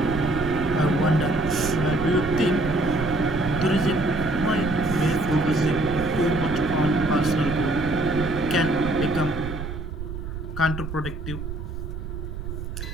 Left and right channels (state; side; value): noise; right; rumble, 7 dB below the sound